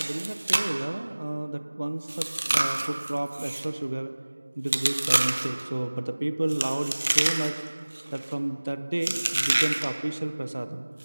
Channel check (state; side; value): inverted; both; correlation -1.00